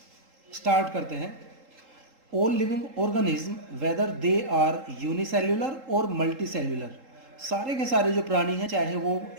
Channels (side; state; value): left; late; 3.8 ms